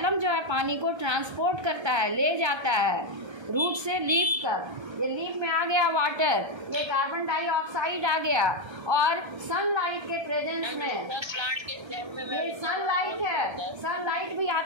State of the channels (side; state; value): left; late; 1.3 ms